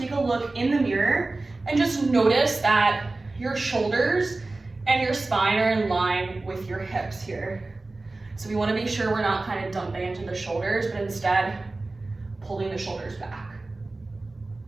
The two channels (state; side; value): quieter; left; 3.2 dB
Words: a look in the mirror and just notice that your shoulders and your spine are in line with your hips here. So we want to make sure we're not kind of dumping into the shoulders, but instead pulling the shoulders back.